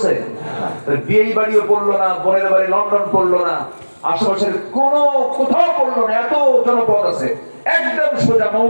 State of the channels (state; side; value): inverted; both; correlation -1.00